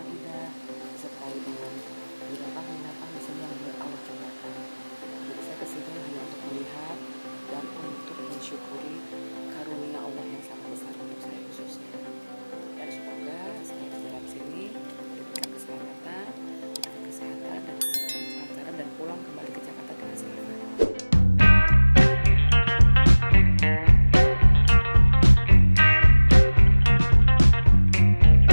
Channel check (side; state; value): both; inverted; correlation -1.00